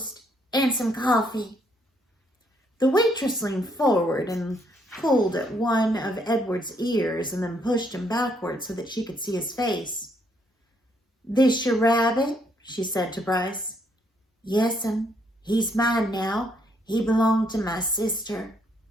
and some coffee." The waitress leaned forward and pulled at one of Edward's ears and then pushed him backward so that she could see his face. "This your rabbit?" she said to Bryce. "Yes'm. He's mine now. He belonged to my sister."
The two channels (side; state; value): both; normal; correlation 0.71